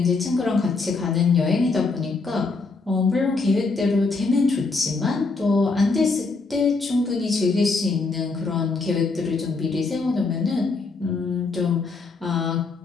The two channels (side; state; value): right; quieter; 4.0 dB